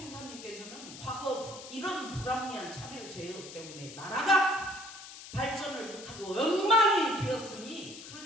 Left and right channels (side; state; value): left; noise; hiss, 14 dB below the sound